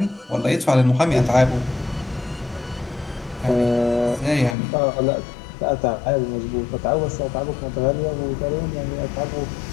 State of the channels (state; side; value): drops out; right; at 4.5 s